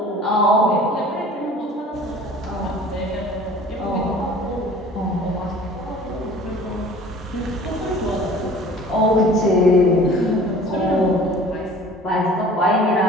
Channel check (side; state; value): both; normal; correlation 0.47